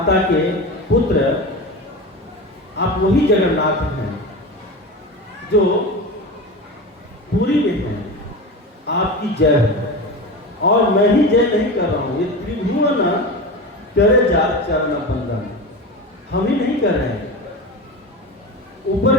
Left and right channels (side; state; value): both; normal; correlation 0.26